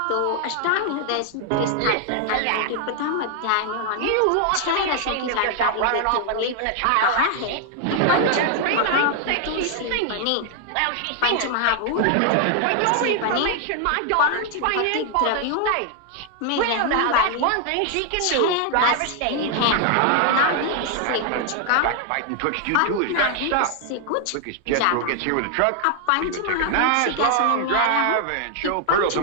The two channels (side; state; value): both; different; correlation 0.00